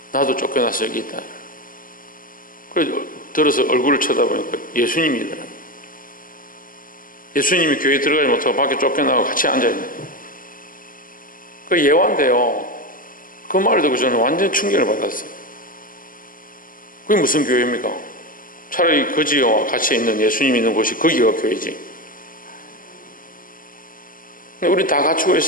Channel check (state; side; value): late; right; 0.40 ms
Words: 나도 쫓겨나서 여기 있다. 그래서 들어서 얼굴을 쳐다보니까 예수님이더라. 예수님이 교회에 들어가지 못하고 밖에 쫓겨나고 같이 앉아있는. 그 예화인데요. 그 말을 듣고 저는 완전 충격을 받았어요. 그게 무슨 교회입니까? 차라리 거지와 같이 있는 예수님이 있는 곳이 거기가 교회지. 우리 다 갖추고